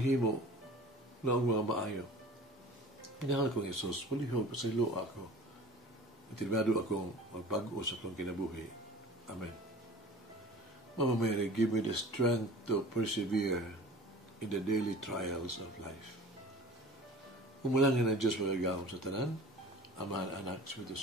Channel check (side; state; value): both; normal; correlation 0.41